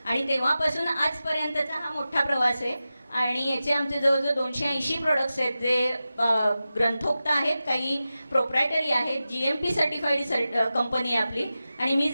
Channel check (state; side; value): inverted; both; correlation -0.93